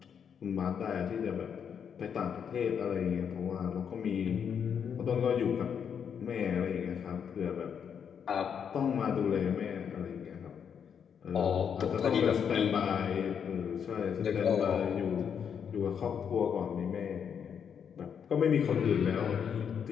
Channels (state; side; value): quieter; right; 7.5 dB